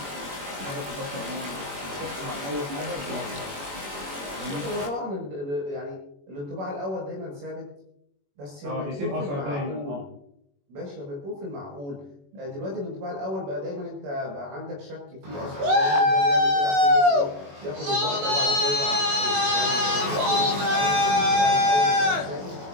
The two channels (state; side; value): late; left; 21 ms